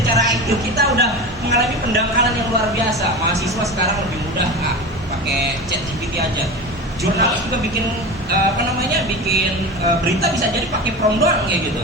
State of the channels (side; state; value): both; normal; correlation 0.28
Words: IQ kita udah mengalami pendangkalan yang luar biasa. Mahasiswa sekarang lebih mudah pakai ChatGPT aja. Jurnalis juga bikin berita bisa jadi pakai prompt doang kayak gitu.